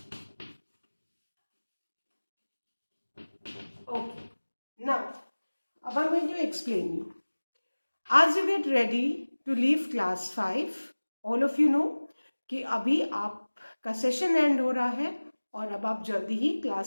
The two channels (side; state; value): both; inverted; correlation -1.00